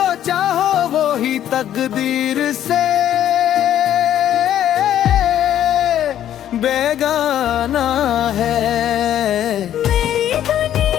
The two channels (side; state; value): right; quieter; 11.1 dB